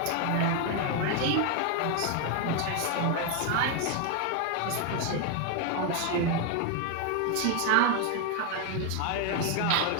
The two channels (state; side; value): different; both; correlation 0.01